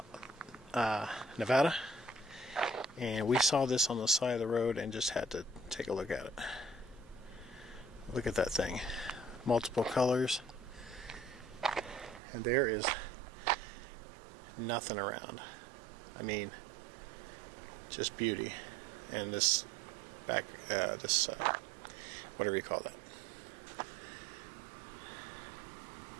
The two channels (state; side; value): drops out; left; at 12.2 s